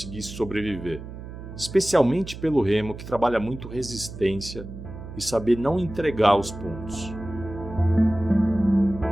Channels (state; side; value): noise; right; hum, 12 dB below the sound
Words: sobreviver, especialmente pelo remo, que trabalha muito resistência e saber não entregar os pontos.